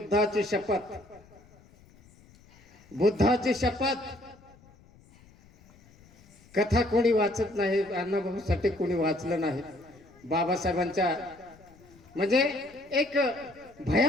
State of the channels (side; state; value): left; noise; rumble, 26 dB below the sound